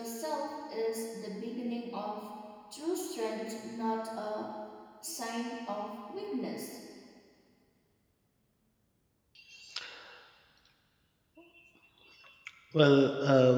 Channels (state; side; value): identical; both; correlation 1.00